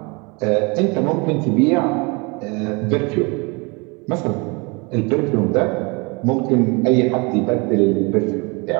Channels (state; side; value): quieter; left; 29.1 dB